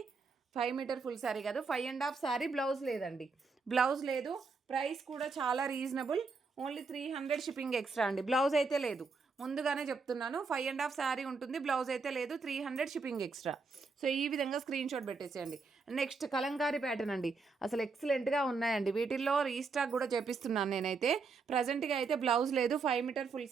5 metre full sari కాదు, 5.5 శారీ. బ్లౌజ్ లేదండి, బ్లౌజ్ లేదు. ప్రైస్ కూడా చాలా రీజనబుల్, ఓన్లీ 300 షిప్పింగ్ ఎక్స్ట్రా అండి. బ్లౌజ్ అయితే లేదు, ముందుగానే చెప్తున్నాను. 5.5 శారీ ఉంటుంది, బ్లౌజ్ అయితే లేదు, 300 షిప్పింగ్ ఎక్స్ట్రా. సో ఈ విధంగా స్క్రీన్ షాట్ పెట్టేసేయండి. నెక్స్ట్ కలంకారీ ప్యాటర్న్ అండి, అసలు ఎక్సలెంట్గా ఉన్నాయండి. వీటిల్లో రీస్టాక్ కూడా చేపిస్తున్నాను నేనైతే. ప్రజెంట్గా అయితే బ్లౌజ్ లేదు. 5 metre full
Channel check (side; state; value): left; quieter; 4.5 dB